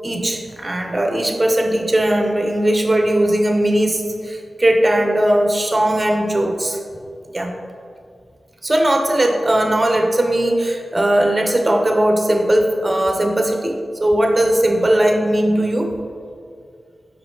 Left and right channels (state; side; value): normal; both; correlation 0.96